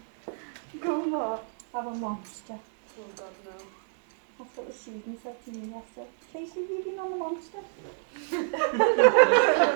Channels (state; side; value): silent; left; 59 dB below the other